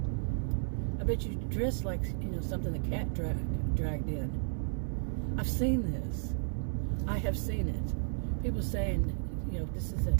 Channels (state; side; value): silent; left; digital silence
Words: I bet you dress like, you know, something the cat dragged in. I've seen this. I have seen it. People saying, you know, this is a,